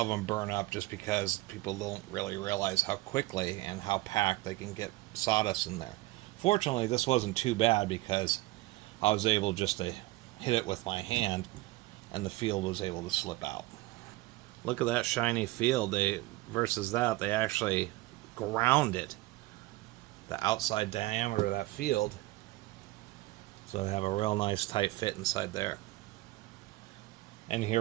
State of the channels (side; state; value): left; quieter; 19.4 dB